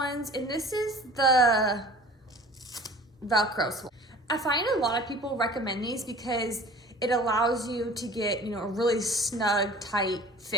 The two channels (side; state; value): both; normal; correlation 0.44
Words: and this is the Velcro swaddle. I find a lot of people recommend these because it allows you to get, a really snug, tight